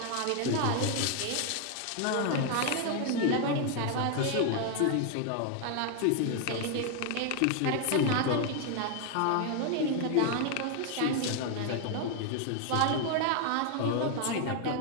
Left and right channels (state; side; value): different; both; correlation 0.00